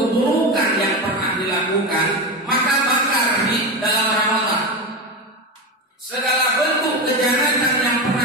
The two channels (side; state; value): both; normal; correlation 0.19